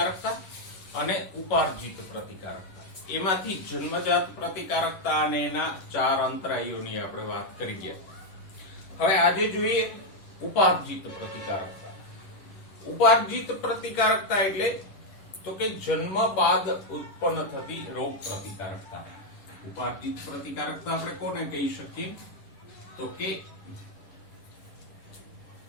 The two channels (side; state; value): right; late; 11 ms